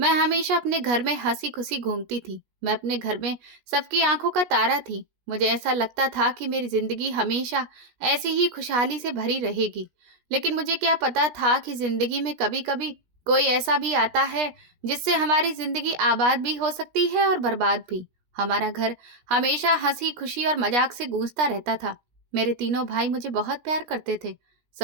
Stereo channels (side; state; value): left; late; 17 ms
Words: हमेशा अपने घर में हंसी खुशी घूमती थी। मैं अपने घर में सबकी आंखों का तारा थी। मुझे ऐसा लगता था कि मेरी जिंदगी हमेशा ऐसे ही खुशहाली से भरी रहेगी। लेकिन मुझे क्या पता था कि जिंदगी में कभी-कभी कोई ऐसा भी आता है जिससे हमारी जिंदगी आबाद भी हो सकती है और बर्बाद भी। हमारा घर हमेशा हंसी खुशी और मजाक से गूंजता रहता था। मेरे तीनों भाई मुझे बहुत प्यार करते थे।